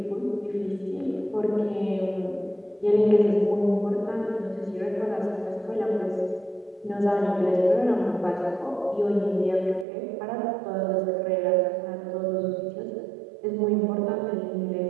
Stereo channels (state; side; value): drops out; left; at 9.9 s